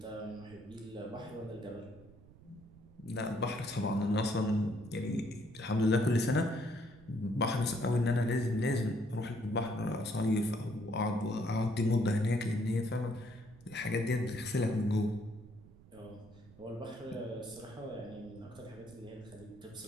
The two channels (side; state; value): right; noise; rumble, 22 dB below the sound